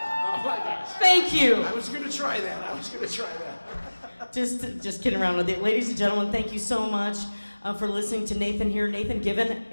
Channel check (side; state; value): both; inverted; correlation -1.00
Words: my gosh. Thank you! I was going to try that. Just kidding around with it. Ladies and gentlemen, thank you so much for listening to Nathan here. Nathan